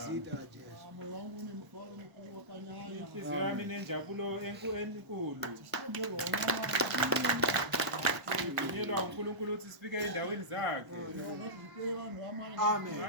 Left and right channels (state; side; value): late; left; 1.0 ms